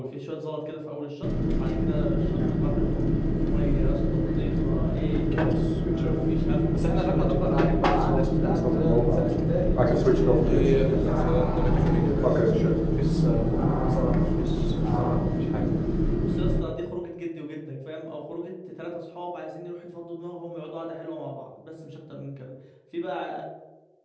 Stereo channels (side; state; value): both; identical; correlation 1.00